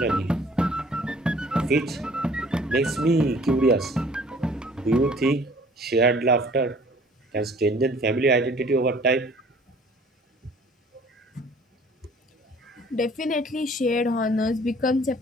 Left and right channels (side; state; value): both; normal; correlation 0.53